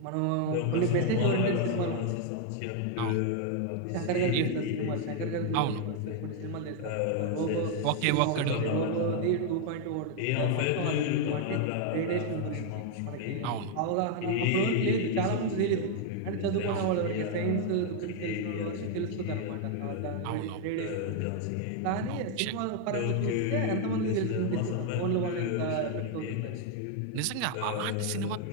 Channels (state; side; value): different; both; correlation 0.00